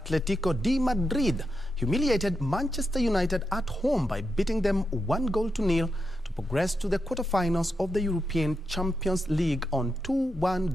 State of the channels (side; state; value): both; normal; correlation 0.86